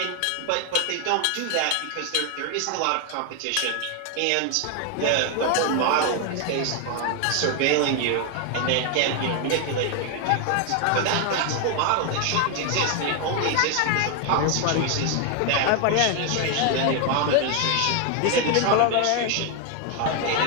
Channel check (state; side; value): different; both; correlation 0.01